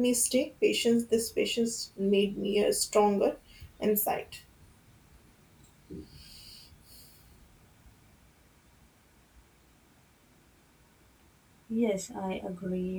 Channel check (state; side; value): identical; both; correlation 1.00